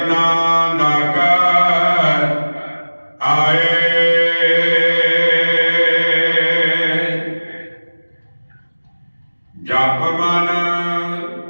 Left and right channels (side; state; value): both; inverted; correlation -1.00